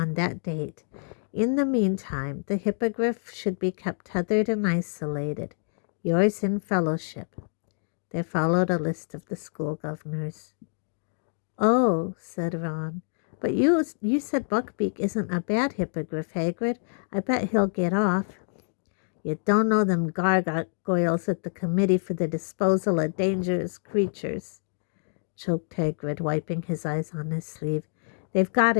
that date. In the meantime, the hippogriff should be kept tethered and isolated. Yours in fellowship." There followed a list of the school governors. "Oh," said Ron, "but you said Buckbeak isn't a bad hippogriff, Hagrid. I bet he'll get off." "You don't know them gargoyles at the Committee for the Disposal of Dangerous Creatures," choked Hagrid, wiping his eyes on his sleeve. "They've got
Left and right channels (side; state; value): right; silent; digital silence